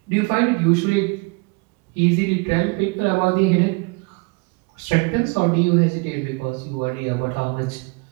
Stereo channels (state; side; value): quieter; left; 29.7 dB